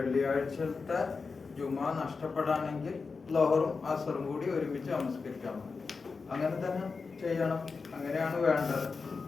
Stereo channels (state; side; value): quieter; right; 4.6 dB